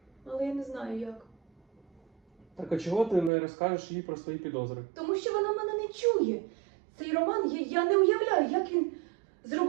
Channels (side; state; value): left; drops out; at 3.3 s